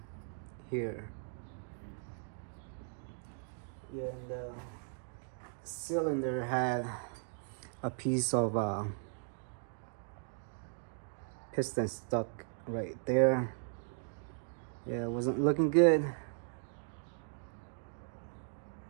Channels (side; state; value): left; silent; 53 dB below the other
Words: here. Yeah, and the cylinder had a piece of piston stuck right there. Yeah, it wasn't looking good.